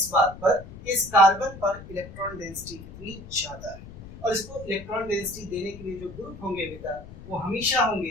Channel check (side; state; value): left; noise; rumble, 15 dB below the sound